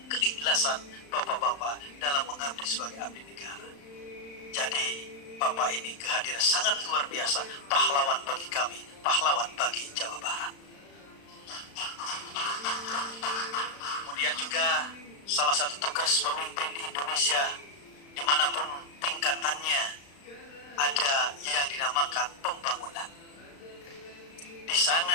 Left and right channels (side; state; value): right; late; 35 ms